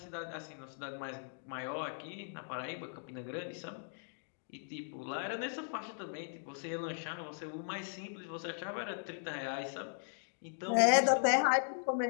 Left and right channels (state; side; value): silent; right; digital silence